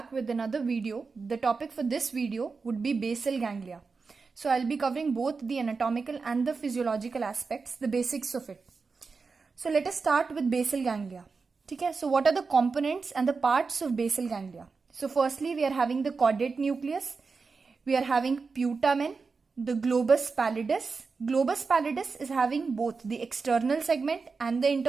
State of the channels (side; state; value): left; quieter; 4.7 dB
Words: with another video. The topic for this video would be basal ganglia. So I'll be covering both the anatomical and the physiological aspects, the basics of it. So let us start with basal ganglia. Okay, so what are the components and the parts of basal ganglia? So firstly, we are having the caudate nucleus. We are having putamen, the globus pallidus. Globus pallidus is having both the external segment and the